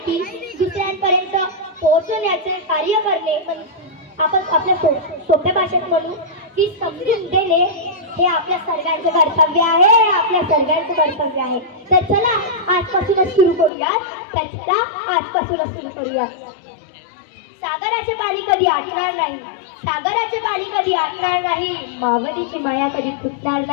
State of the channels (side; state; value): right; drops out; at 13.7 s